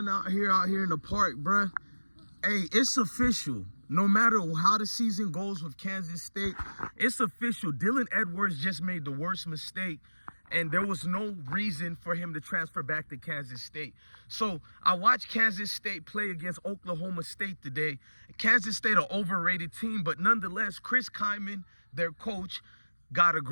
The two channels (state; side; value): inverted; both; correlation -1.00